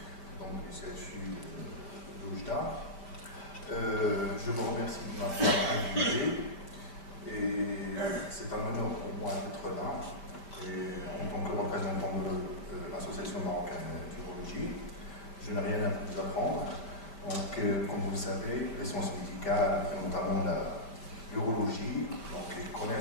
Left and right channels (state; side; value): late; right; 5.1 ms